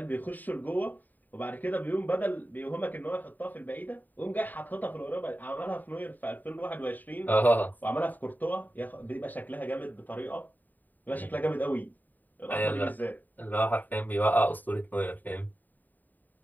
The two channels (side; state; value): right; late; 0.087 ms